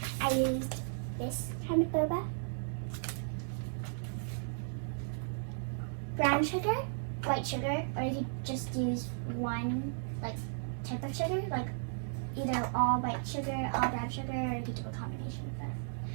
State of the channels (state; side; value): silent; left; digital silence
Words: I used this kind of boba. Brown sugar, white sugar, or you could just use one type of sugar, like either all white sugar, all brown sugar, or you could do a combination of